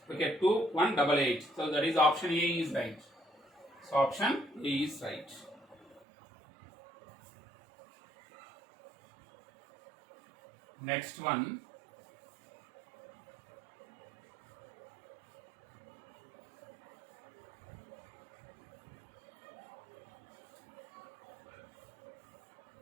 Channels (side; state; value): left; drops out; at 6.1 s